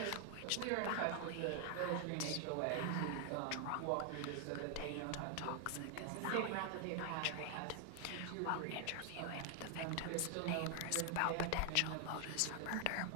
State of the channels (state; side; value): different; both; correlation 0.00